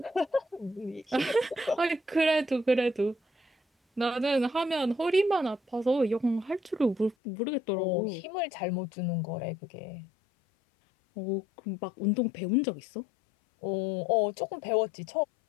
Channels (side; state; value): right; drops out; at 7.2 s